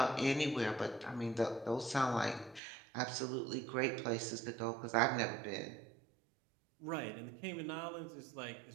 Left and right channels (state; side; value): drops out; left; at 2.6 s